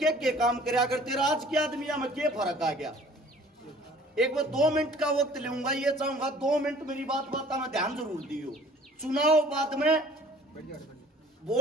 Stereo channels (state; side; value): normal; both; correlation 0.52